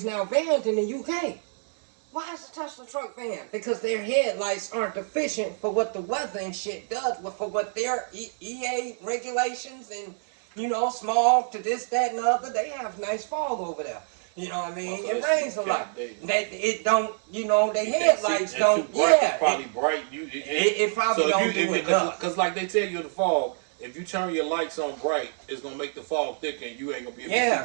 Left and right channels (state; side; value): silent; left; digital silence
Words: now banned in the UK. Why is the Tesla truck banned? Because their headlights aren't efficient for what the weather and shit does, but for what their EA regulations and, you know, smog to this, that, and the other. They have nice fog over there. You know what I mean? It rains a lot. It don't, you know, the headlights don't. It's probably bright. It probably don't do enough. Because like they tell you in the fog, if you turn your lights on bright, it's going to make the fog thicker and you ain't going to be able to see.